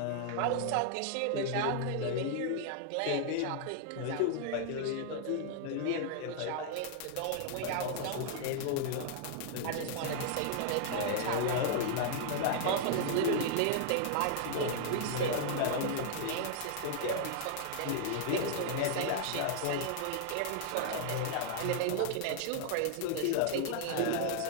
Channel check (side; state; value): both; different; correlation 0.00